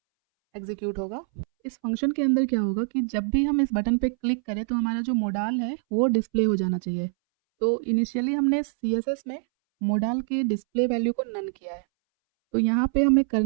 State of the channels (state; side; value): silent; left; 62 dB below the other